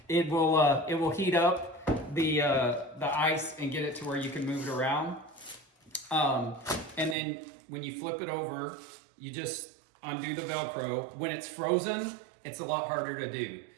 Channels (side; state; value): left; drops out; at 7.2 s